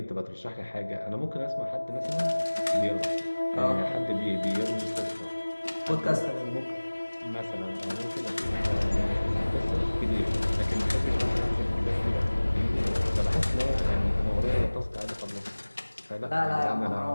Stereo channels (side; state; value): both; inverted; correlation -1.00